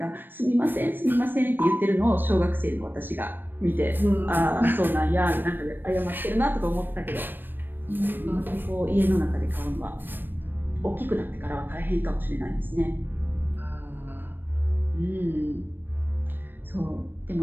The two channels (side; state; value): left; late; 0.094 ms